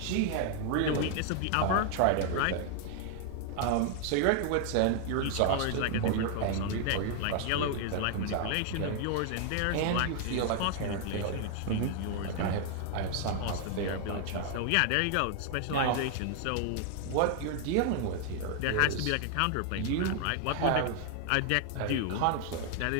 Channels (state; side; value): different; both; correlation 0.00